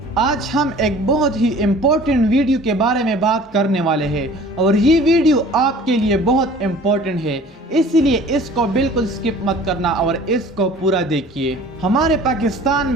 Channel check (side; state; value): both; normal; correlation 0.47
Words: آج ہم ایک بہت ہی امپورٹنٹ ویڈیو کے بارے میں بات کرنے والے ہیں اور یہ ویڈیو آپ کے لیے بہت امپورٹنٹ ہے، اسی لیے اس کو بالکل سکپ مت کرنا اور اس کو پورا دیکھیے۔ ہمارے پاکستان